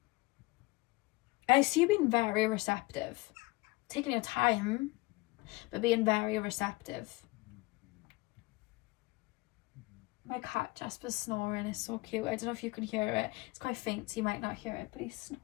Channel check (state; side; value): quieter; right; 22.6 dB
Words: see you being very receptive. Taking your time, but being very receptive. My cat Jasper's snoring is so cute. I don't know if you can hear it. It's quite faint, so you might not hear it, but he's